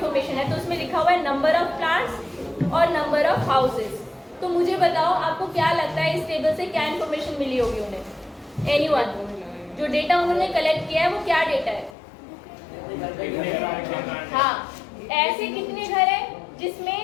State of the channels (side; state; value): right; drops out; at 12.0 s